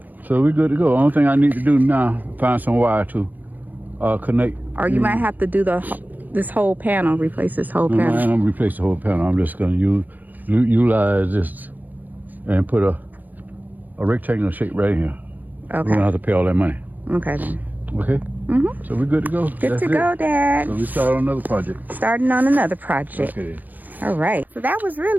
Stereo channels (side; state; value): left; late; 0.084 ms